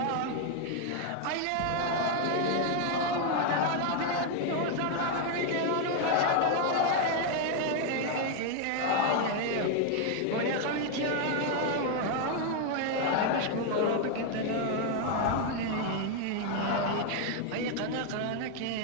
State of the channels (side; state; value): both; different; correlation 0.01